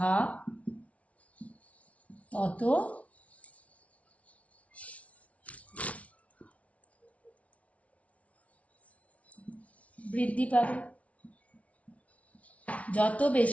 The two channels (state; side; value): late; right; 0.065 ms